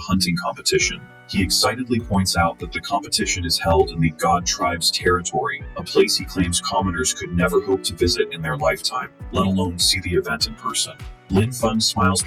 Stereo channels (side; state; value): both; identical; correlation 1.00